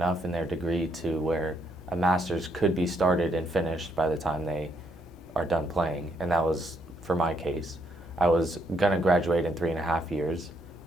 in their degree to where a master's could be started and finished by the time they are done playing. And that was for my case. I was gonna graduate in 3.5 years,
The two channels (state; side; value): normal; both; correlation 0.74